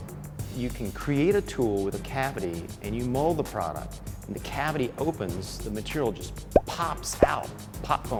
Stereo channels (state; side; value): identical; both; correlation 1.00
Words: You can create a tool with a cavity and you mold the product, and the cavity opens, the material just pops out. Pop